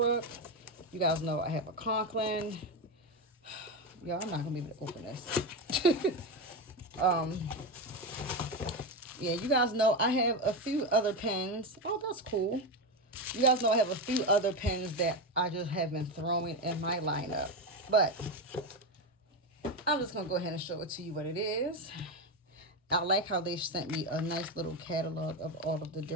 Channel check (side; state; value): both; normal; correlation 0.14